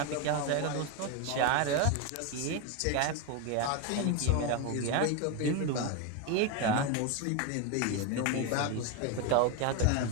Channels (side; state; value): both; different; correlation 0.02